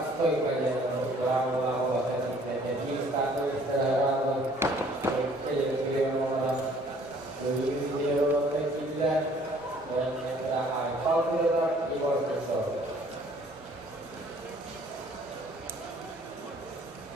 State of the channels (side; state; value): both; normal; correlation 0.57